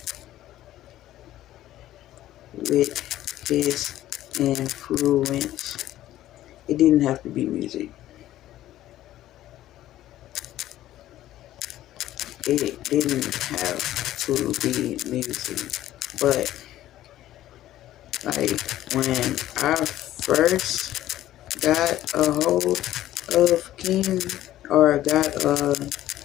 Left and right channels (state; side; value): quieter; right; 13.8 dB